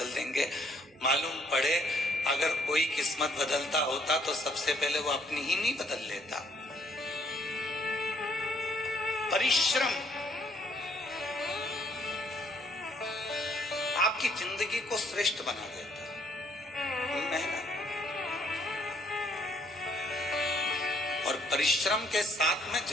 देंगे। मालूम पड़े अगर कोई किस्मत बदलता होता तो सबसे पहले वो अपनी ही नहीं बदल लेता। परिश्रम आपकी जिंदगी को श्रेष्ठ बना देता है, मेहनत और परिश्रम के साथ में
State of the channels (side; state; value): both; normal; correlation 0.66